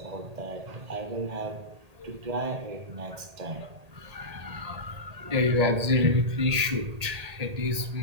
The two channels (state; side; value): late; left; 1.8 ms